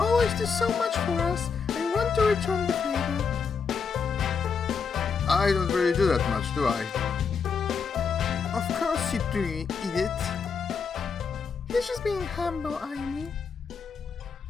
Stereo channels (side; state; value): right; quieter; 5.8 dB